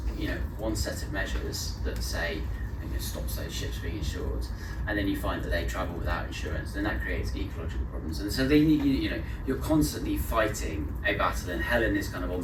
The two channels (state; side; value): identical; both; correlation 1.00